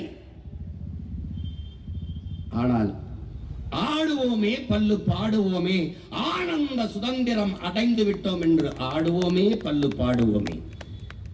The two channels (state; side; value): identical; both; correlation 1.00